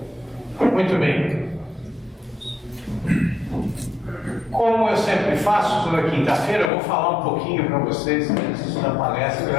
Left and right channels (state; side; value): drops out; right; at 6.7 s